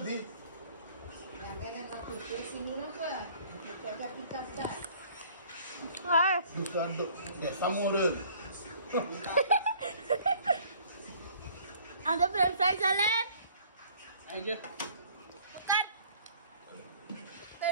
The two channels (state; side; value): inverted; both; correlation -0.55